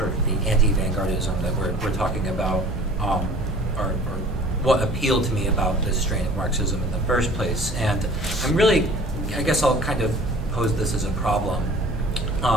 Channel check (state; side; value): normal; both; correlation 0.47